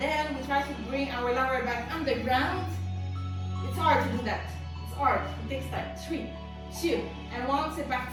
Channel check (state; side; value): identical; both; correlation 1.00